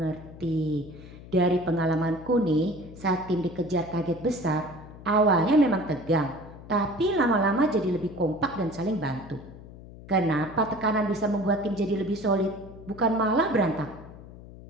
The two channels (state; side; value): noise; left; hum, 17 dB below the sound